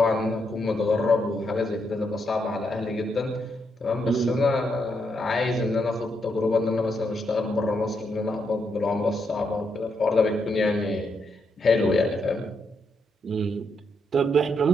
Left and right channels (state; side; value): normal; both; correlation 0.79